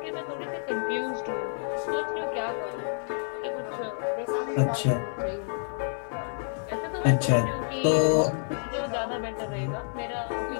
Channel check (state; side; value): silent; right; digital silence